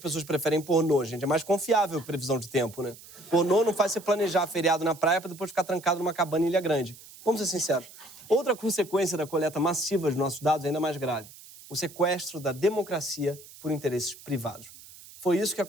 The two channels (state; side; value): noise; right; hiss, 19 dB below the sound